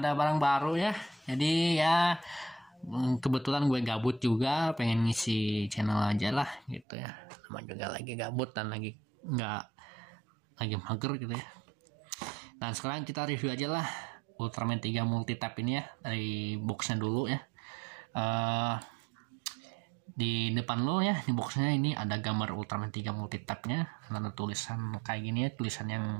barang baru ya. Jadi ya kebetulan gue gabut juga, pengen ngisi channel aja lah gitu ya. Sama juga lagi gabut dan lagi mager gitu ya. Dan sekarang kita review aja lah Ultraman 3 multi-type ini ya, dari boxnya dulu ya. Di depan lo ya, di boxnya ini ada gambar Ultraman 3 multi-type nya, ada tulisan kayak gini ya, tulisan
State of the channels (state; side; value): drops out; left; at 6.9 s